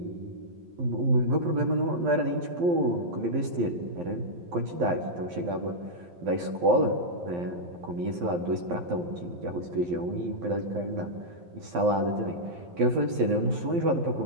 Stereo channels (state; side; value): late; left; 12 ms